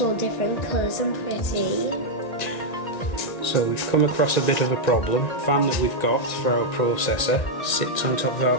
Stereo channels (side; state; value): right; late; 1.7 ms